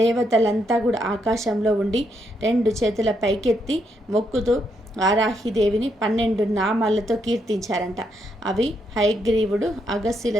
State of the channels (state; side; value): normal; both; correlation 0.78